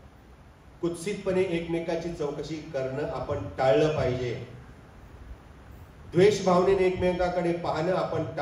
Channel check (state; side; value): identical; both; correlation 1.00